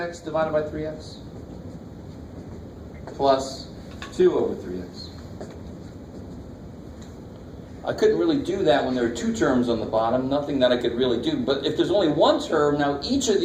divided by 3x plus 2 over 3x. I couldn't really do that when there are 2 terms on the bottom, nothing that I could really do. But if there's only 1 term, now each of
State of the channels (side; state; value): both; identical; correlation 1.00